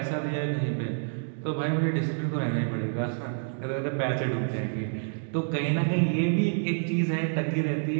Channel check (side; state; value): left; silent; digital silence